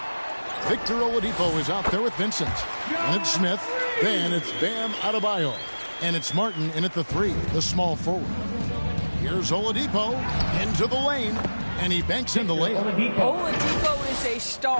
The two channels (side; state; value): both; inverted; correlation -1.00